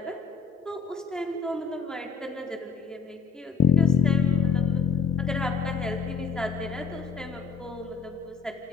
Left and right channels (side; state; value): right; quieter; 6.3 dB